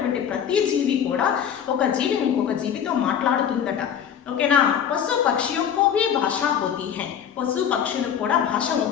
ప్రతి జీవి కూడా ఒక జీవి ఇంకొక జీవితో మాట్లాడుతుందట. ఓకేనా, పశు పక్షిयों को भी भाषा होती है. పశు పక్షులకు కూడా భాష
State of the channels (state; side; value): quieter; right; 8.6 dB